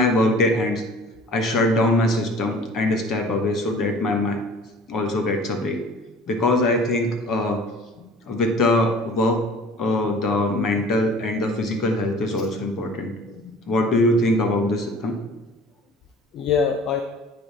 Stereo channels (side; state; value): both; normal; correlation 0.47